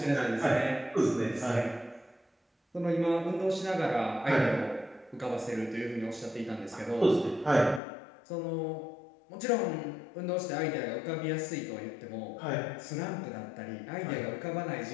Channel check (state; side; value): drops out; right; at 7.8 s